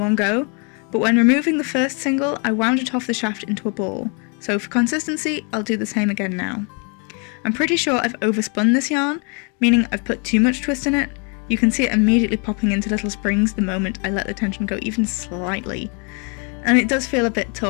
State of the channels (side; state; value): right; quieter; 35.5 dB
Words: one go, but when removing the first single, I wound it off the shaft into a ball, so for consistency, I'll do the same again now. I'm pretty sure I've overspun this yarn, meaning I've put too much twist in it. You can see it immediately popping into little springs the moment I let the tension go even slightly, and it does feel a bit